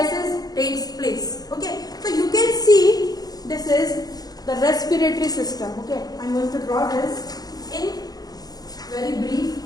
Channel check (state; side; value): late; right; 0.19 ms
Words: takes place. Okay, so you can see this is the respiratory system. Okay, I'm going to draw this in very brief